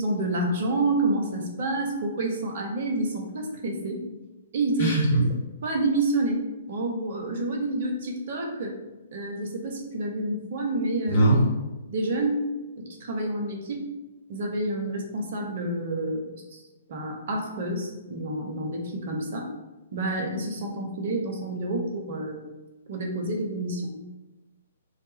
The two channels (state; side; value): inverted; both; correlation -0.52